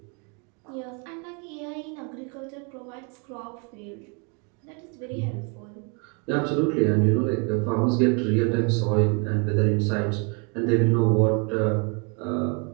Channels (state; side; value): quieter; left; 34.1 dB